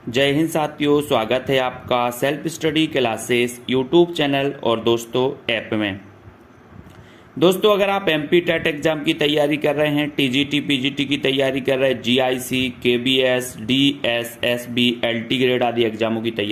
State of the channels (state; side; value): identical; both; correlation 1.00